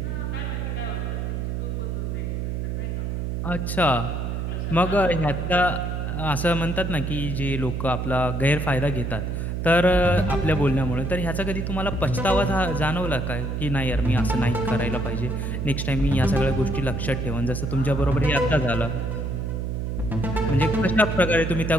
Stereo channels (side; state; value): right; noise; hum, 2 dB below the sound